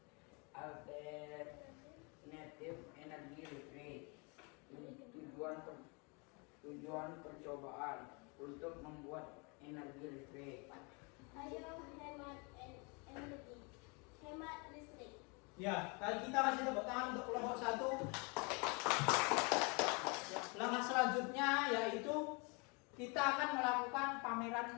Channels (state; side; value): quieter; right; 31.7 dB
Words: alternatif energi listrik. Tujuan percobaan untuk membuat energi listrik. Ayo hemat energi, hemat listrik. Ya, kali kita kasih tepuk tangan untuk kelompok 1. Langkah selanjutnya yaitu kita akan melakukan